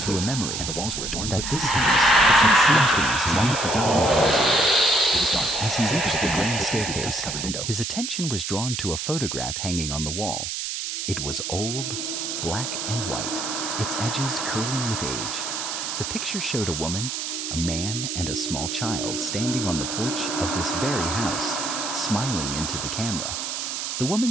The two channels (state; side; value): noise; right; hiss, 4 dB below the sound